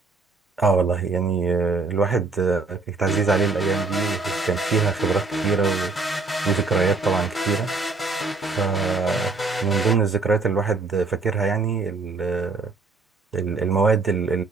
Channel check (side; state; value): left; quieter; 3.8 dB